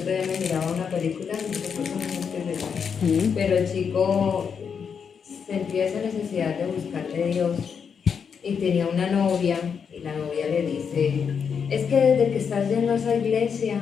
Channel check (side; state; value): right; quieter; 6.6 dB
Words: día me miraba una película, no sé por qué no es esa, pero el chico sentía esa necesidad de buscarle a Dios y tenía una novia y la novia le dice, es que desde que estás yendo a esa iglesia